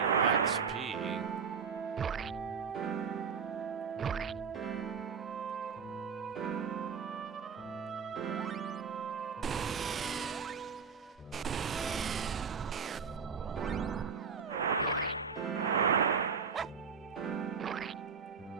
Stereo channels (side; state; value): left; quieter; 6.1 dB